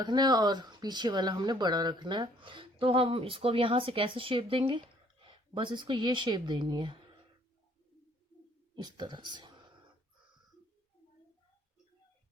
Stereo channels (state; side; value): normal; both; correlation 0.61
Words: है और पीछे वाला हमने बड़ा रखना है, तो हम इसको अब यहाँ से कैसे शेप देंगे, बस इसको ये शेप देनी है इस तरह से।